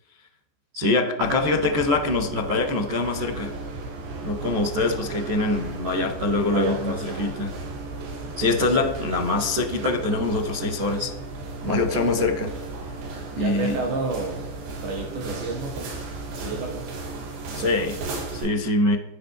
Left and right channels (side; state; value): left; late; 14 ms